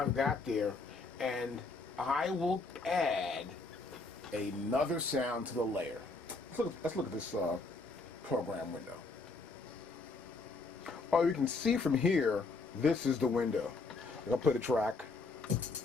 got there, and I will add another sound to the layer. Let's look at this program window. Oh, you can see from here, this is the window. I'll play the track.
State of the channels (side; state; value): right; quieter; 3.7 dB